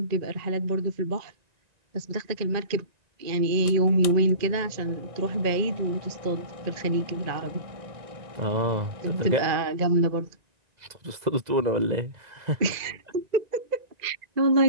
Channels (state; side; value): late; left; 1.9 ms